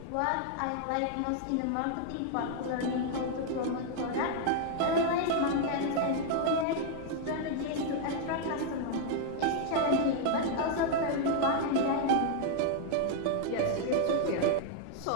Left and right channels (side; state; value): both; different; correlation 0.00